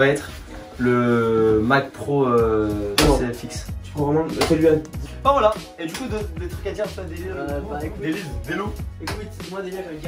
être le Mac Pro CFX. Tu peux vraiment. Celui-là. Bah voilà, et du coup, des trucs à dire, ça, bah, écoute. des loups. Écoute, moi déjà je vais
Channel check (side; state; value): both; identical; correlation 1.00